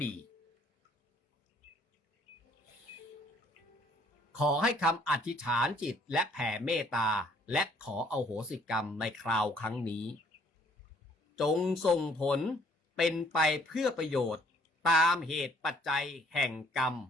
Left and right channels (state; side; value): normal; both; correlation 0.61